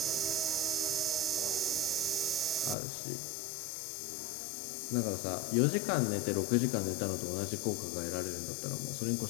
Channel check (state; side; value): drops out; right; at 2.8 s